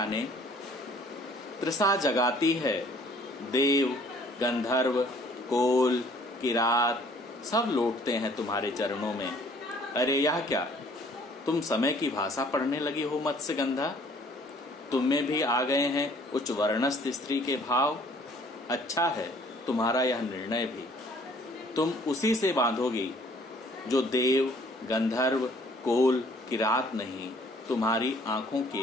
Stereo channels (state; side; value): normal; both; correlation 0.57